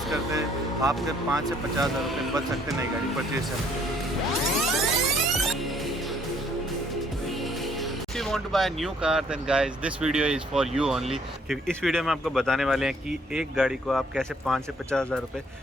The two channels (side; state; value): both; normal; correlation 0.63